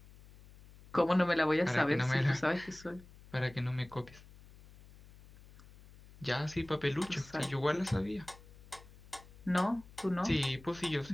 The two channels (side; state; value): left; noise; hum, 21 dB below the sound